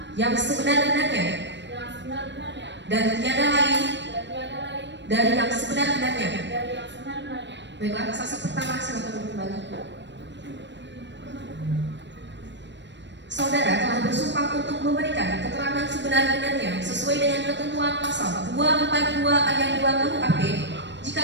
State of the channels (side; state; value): left; late; 0.52 ms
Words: yang sebenar-benarnya dan tiada lain dari yang sebenar-benarnya. Baiklah, saksi pertama silakan kembali. Saudara telah bersumpah untuk memberikan keterangan sebenar-benarnya sesuai dengan ketentuan pasal 242 ayat 2 KUHP. Jika